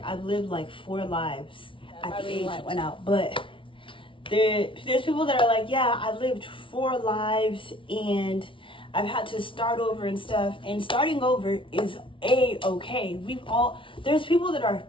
I've lived like 4 lives at the age I went out. But there's people that are like, yeah, I've lived 4 lives and I've had to start over and stuff. And starting over is okay. There's people that are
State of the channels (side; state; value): right; late; 0.25 ms